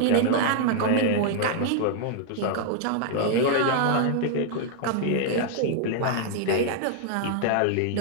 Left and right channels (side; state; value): both; different; correlation -0.01